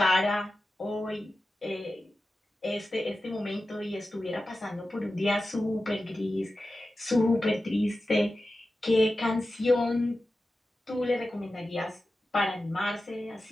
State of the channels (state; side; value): normal; both; correlation 0.93